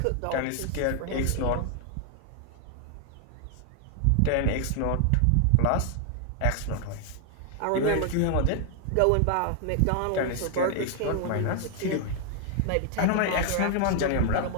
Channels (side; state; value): both; different; correlation 0.00